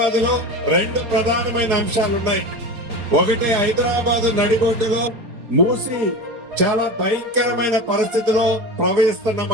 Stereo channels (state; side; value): late; left; 4.3 ms